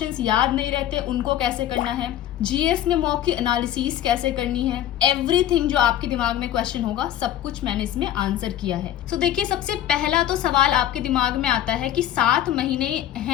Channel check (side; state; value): right; quieter; 11.9 dB